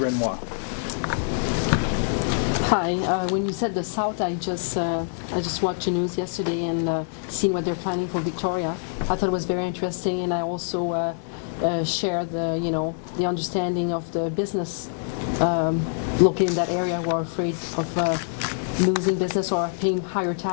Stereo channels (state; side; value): silent; right; 62 dB below the other